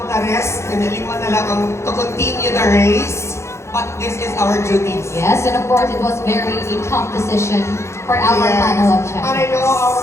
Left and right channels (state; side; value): late; right; 0.13 ms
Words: the rest, kanilima na lang to continue the race. But this is our duty. Yes, and of course it was very a tough decision for our panel of judges. And I know